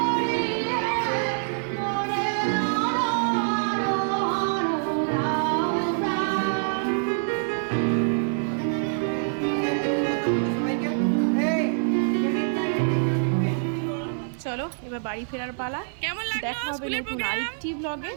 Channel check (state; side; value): silent; left; 61 dB below the other